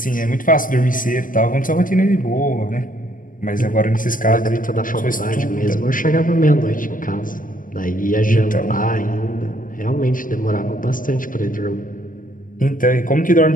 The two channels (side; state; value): right; late; 0.39 ms